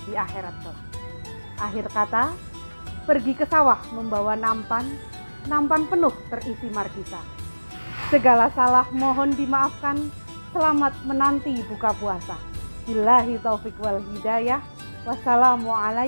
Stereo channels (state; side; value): inverted; both; correlation -1.00